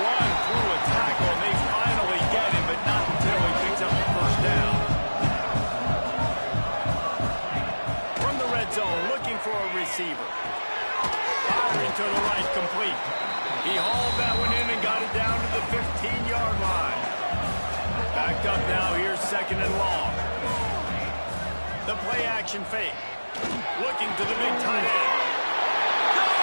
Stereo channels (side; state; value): both; inverted; correlation -1.00